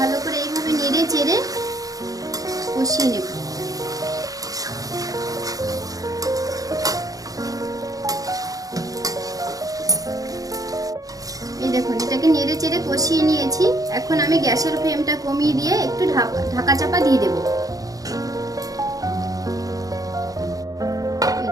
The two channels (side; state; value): left; late; 0.17 ms